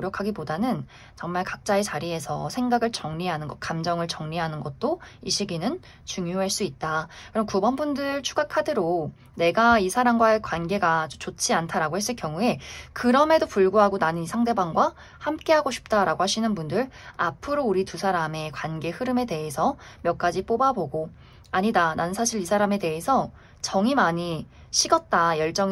정말 각자의 자리에서 생각을 정리하는 것, 감정을 정리하는 것도 이 시기는 중요할 수 있다. 그럼 9번 분들 추가 카드로 내가 이 사람과의 관계가 좋지 않다라고 했을 경우에 그럼에도 불구하고 나는 이 상대방과 함께 하고 싶다라고 하시는 분들 앞으로 우리 두 사람의 관계 흐름에 대해서 몇 가지 뽑아보고 아니다, 난 사실 이 사람에 대해서 정이 많이 식었다,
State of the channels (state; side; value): identical; both; correlation 1.00